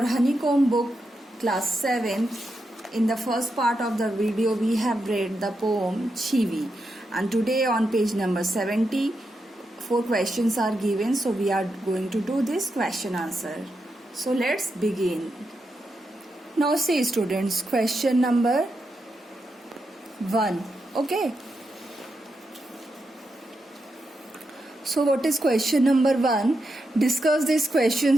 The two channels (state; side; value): normal; both; correlation 0.85